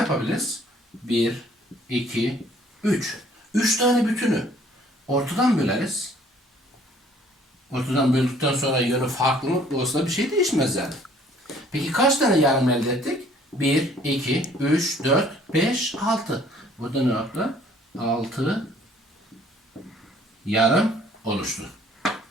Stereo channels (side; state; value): both; normal; correlation 0.58